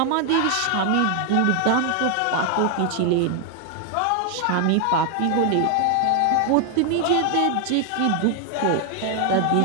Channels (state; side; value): different; both; correlation 0.00